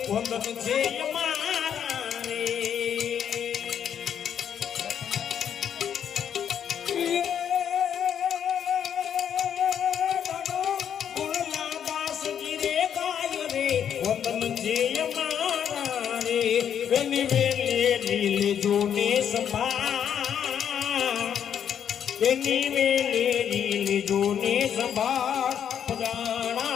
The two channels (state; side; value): quieter; right; 8.8 dB